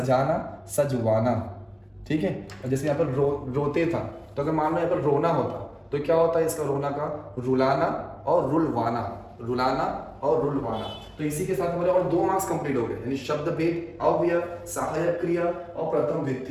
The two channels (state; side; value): identical; both; correlation 1.00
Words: सजवाना। ठीक है, और जैसे यहाँ पर रोते था, तो अगर मान लो यहाँ पर रोना होता तो क्या होता है इसका, रोना का रुलाना और रुलवाना, रुलाना और रुलवाना। तो इसी के साथ हमारे और 2 मार्क्स कंप्लीट हो गए, यानी शब्द भेद, अव्यय, सहायक क्रिया और प्रथम